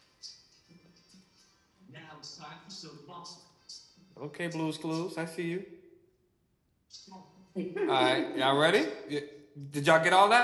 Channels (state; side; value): identical; both; correlation 1.00